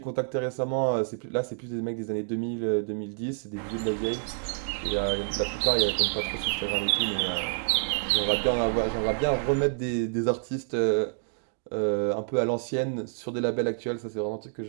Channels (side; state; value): left; silent; digital silence